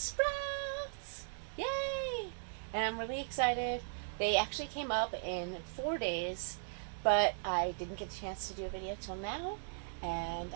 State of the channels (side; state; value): left; silent; digital silence